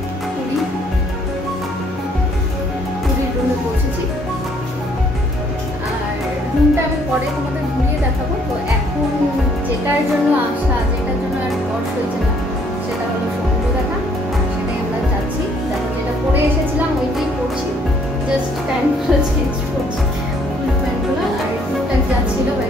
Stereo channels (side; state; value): both; normal; correlation 0.64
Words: পুরীর রুমে পৌঁছেছি আর রুমটা আমি পরে তোমাদের ঘুরিয়ে দেখাবো। তো এখন যেটার জন্য আসা, যেটার জন্য আর বর্ষ হয়েছে না, সেটা হলো সমুদ্র দেখা। সেটাই আমরা যাচ্ছি। দেখো যেটা পরে এসেছিলাম ওইটাই পড়ছি, জাস্ট প্যান্টগুলো চেঞ্জ করছি, ফুল প্যান্টগুলো আর টুকটাক যাচ্ছিলো